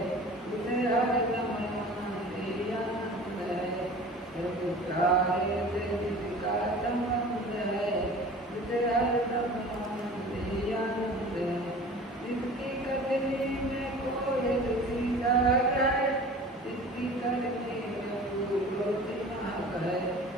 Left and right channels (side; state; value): both; normal; correlation 0.41